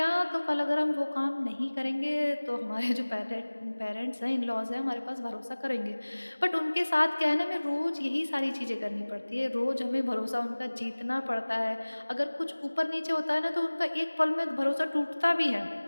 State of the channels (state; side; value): inverted; both; correlation -1.00